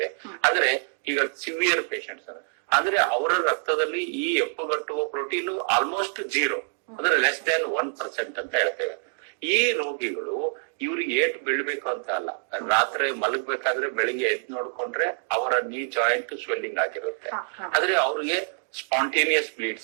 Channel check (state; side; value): silent; left; digital silence